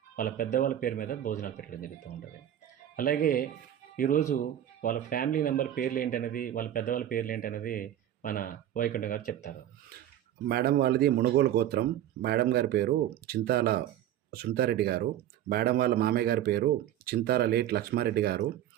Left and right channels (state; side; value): quieter; left; 11.6 dB